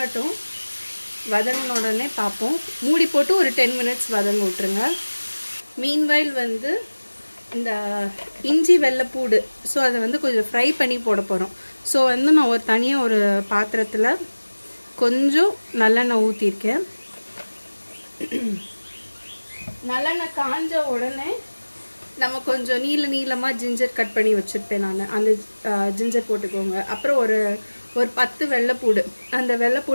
வதங்கின உடனே பார்ப்போம். மூடி போட்டு ஒரு 10 minutes வதங்க விட்டுருங்க. மீன்வைல் வந்து இந்த இஞ்சி வெள்ளைப்பூடு, ஸோ அதை வந்து கொஞ்சம் ஃப்ரை பண்ணி போட போகிறோம். ஸோ வந்து நான் தனியாக ஒரு பாத்திரத்தில் கொஞ்சம் நல்லெண்ணெய் ஊற்றிருக்கேன். நல்லெண்ணெய் காஞ்ச உடனே நம்ம கொஞ்சம் நீளமாக ஜிஞ்சர் கட் பண்ணி வச்சுருப்பேன் நான். அந்த ஜிஞ்சர் போட்டுக்கோங்க. அப்புறம் ஒரு 10 வெள்ளைப்பூடு, அந்த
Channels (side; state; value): both; inverted; correlation -1.00